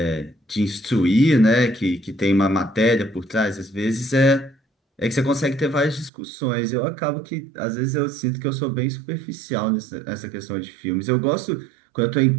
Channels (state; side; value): drops out; left; at 6.1 s